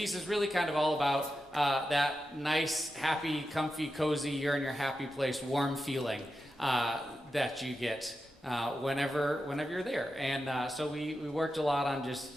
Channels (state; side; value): normal; both; correlation 0.90